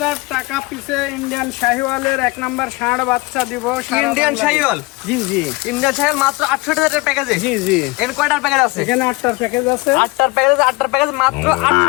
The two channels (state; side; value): quieter; right; 24.2 dB